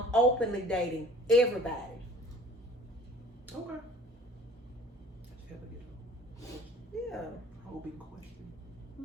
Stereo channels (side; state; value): both; normal; correlation 0.49